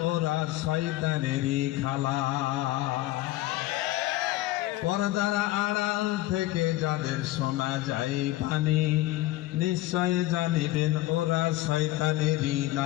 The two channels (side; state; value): right; quieter; 16.8 dB